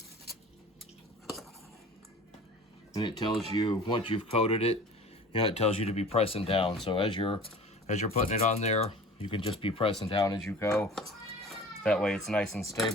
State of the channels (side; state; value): both; normal; correlation 0.42